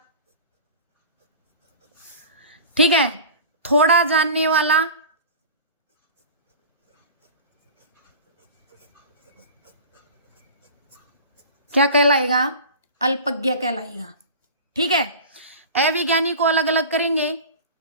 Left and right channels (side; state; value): both; inverted; correlation -0.36